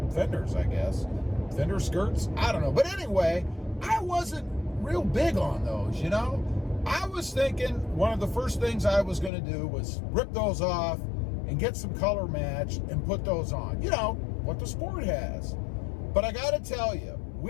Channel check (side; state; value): right; drops out; at 9.3 s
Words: fenders, I guess. Fender skirts? I don't know. But anyway, I wasn't real big on those, I was thinking one of the first things I was going to do was rip those off and get some color match and put those on. What the Sport has. But I got to tell you,